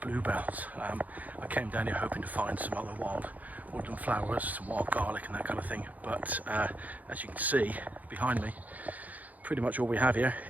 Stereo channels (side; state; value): left; late; 0.078 ms